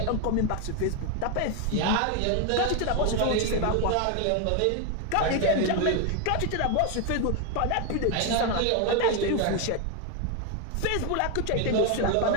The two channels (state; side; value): different; both; correlation 0.01